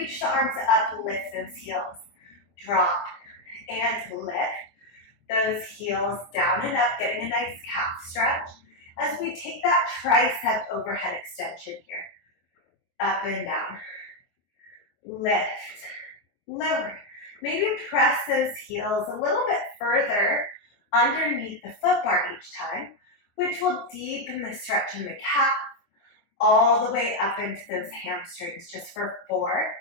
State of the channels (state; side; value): late; right; 24 ms